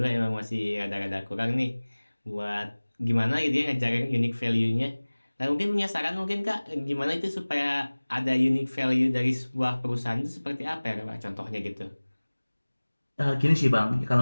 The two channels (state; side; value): inverted; both; correlation -1.00